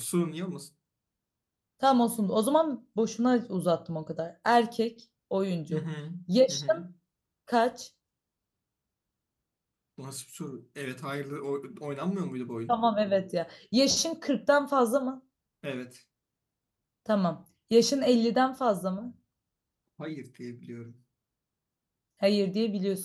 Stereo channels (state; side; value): identical; both; correlation 1.00